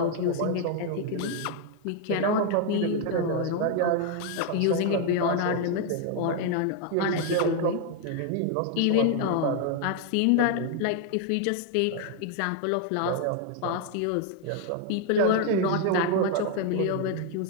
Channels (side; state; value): both; different; correlation 0.00